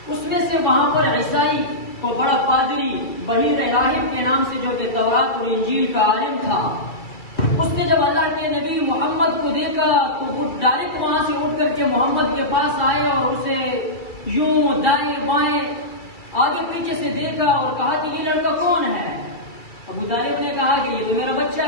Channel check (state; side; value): late; right; 2.3 ms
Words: اس میں سے وہاں پر عیسائی کو بڑا پادری بحیر راہب کے نام سے، جو کہ تورات اور انجیل کا عالم تھا، اس نے جب اللہ کے نبی محمد کو دیکھا تو وہ ڈائریکٹ وہاں سے اٹھ کر کے محمد کے پاس آئے اور اسے یوں دائیں بائیں آگے پیچھے سے دیکھا اور کہا کہ یہ لڑکا کون ہے؟ ابو طالب نے کہا کہ یہ تو میرا بچہ